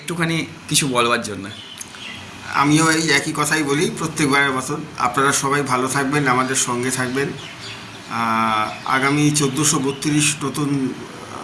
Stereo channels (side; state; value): both; identical; correlation 1.00